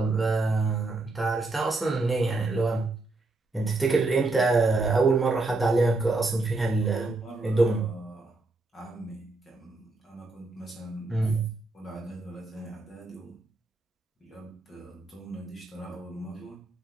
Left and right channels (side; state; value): left; quieter; 3.2 dB